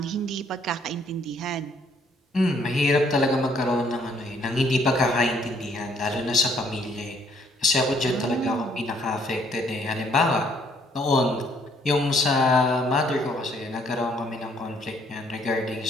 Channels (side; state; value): both; normal; correlation 0.65